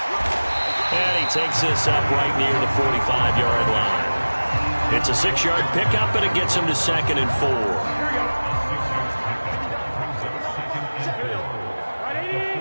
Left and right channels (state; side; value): inverted; both; correlation -1.00